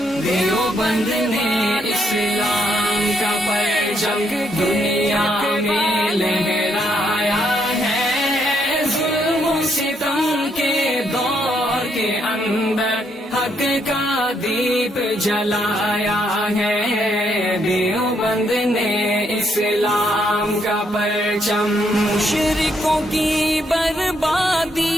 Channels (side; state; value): both; normal; correlation 0.74